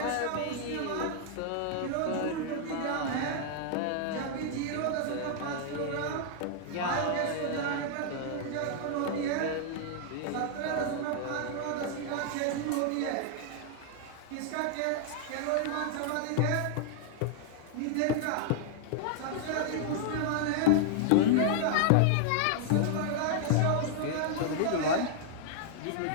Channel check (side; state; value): both; different; correlation -0.01